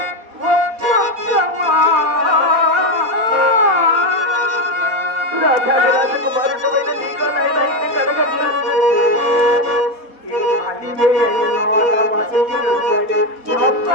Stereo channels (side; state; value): left; late; 4.1 ms